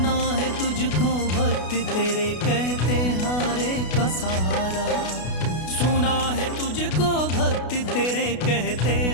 है तुझको भक्त तेरे कहते हारे का सहारा। सुना है तुझको भक्त तेरे कहते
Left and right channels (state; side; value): late; right; 32 ms